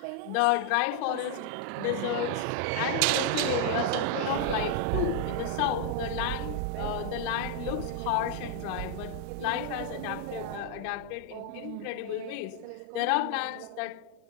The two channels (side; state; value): both; different; correlation 0.00